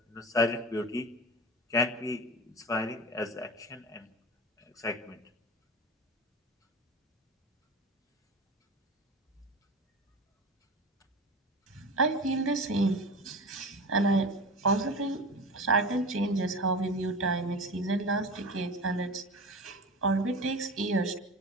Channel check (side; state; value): both; normal; correlation 0.30